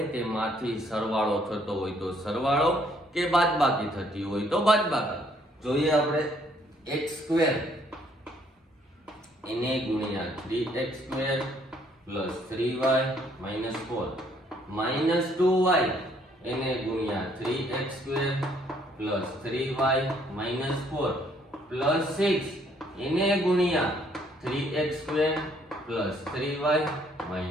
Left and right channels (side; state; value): both; normal; correlation 0.66